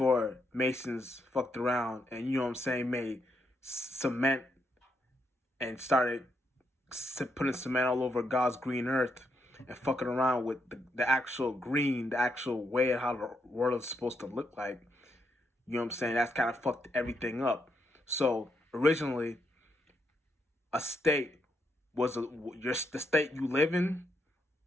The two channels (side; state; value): both; normal; correlation 0.79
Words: Masons fucked around and, you know what I'm saying, made cement and started putting cement all over God's green earth and fucking around with the actual green, the actual way of how the world is supposed to look like. You know what I'm saying? That's kind of fucked everything up. So originally, a state was the state you live in,